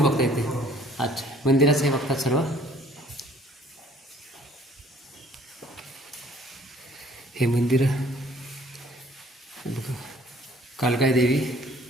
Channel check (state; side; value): normal; both; correlation 0.57